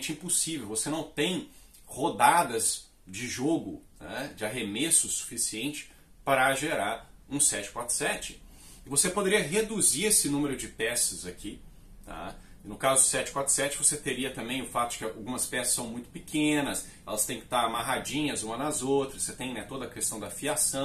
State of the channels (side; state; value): both; identical; correlation 1.00